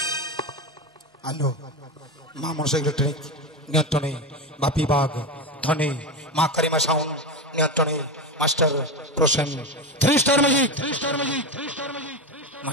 আলো মা মনসা ইলেকট্রনিক নিয়ন্ত্রণে, বাপি বাগ ধনে, মা কারিমা সাউন্ড নিয়ন্ত্রণে, master Prasen 3 star magic,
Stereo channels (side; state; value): both; normal; correlation 0.17